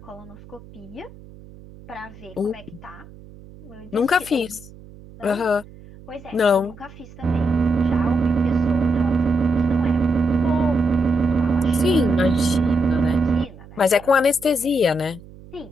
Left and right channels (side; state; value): right; noise; hum, 20 dB below the sound